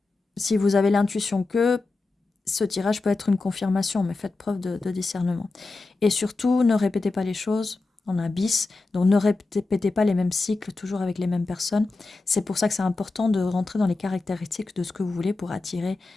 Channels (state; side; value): quieter; right; 3.5 dB